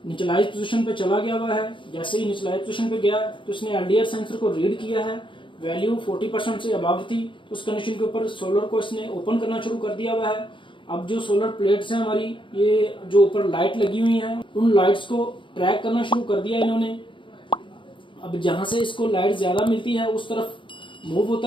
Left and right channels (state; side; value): late; right; 0.24 ms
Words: निचलाइज पोजीशन पे चला गया हुआ है। जैसे ही निचलाइज पोजीशन पे गया तो इसने एलडीआर सेंसर को रीड किया है, वैल्यू 40% से अबव थी, तो उस कंडीशन के ऊपर सोलर को इसने ओपन करना शुरू कर दिया हुआ है। अब जो सोलर प्लेट्स हैं हमारी, ये जो ऊपर लाइट लगी हुई हैं, उन लाइट्स को ट्रैक करना शुरू कर दिया इन्होंने। अब जहां से इसको लाइट ज्यादा मिलती है उस तरफ मूव